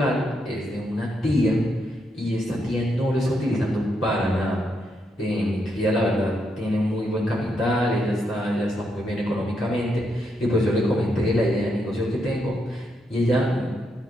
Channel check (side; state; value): both; normal; correlation 0.80